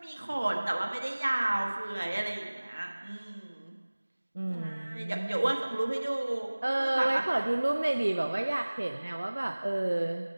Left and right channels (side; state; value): both; inverted; correlation -1.00